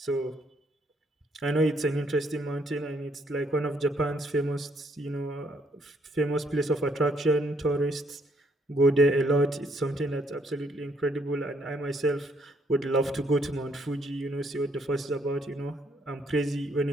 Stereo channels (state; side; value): normal; both; correlation 0.70